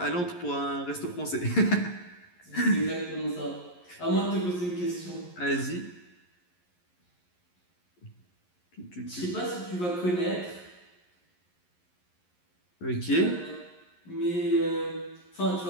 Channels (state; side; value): late; right; 11 ms